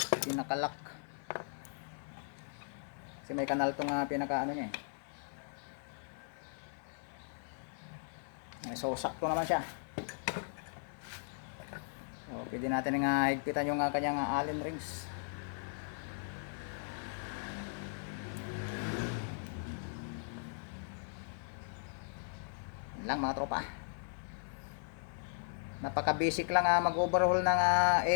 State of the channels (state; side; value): silent; right; 53 dB below the other